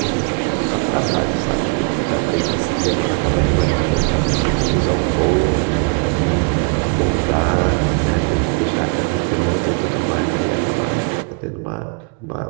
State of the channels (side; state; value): left; quieter; 36.4 dB